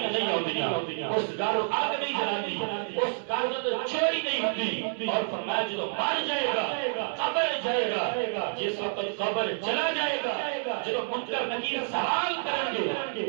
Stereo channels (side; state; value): left; silent; 59 dB below the other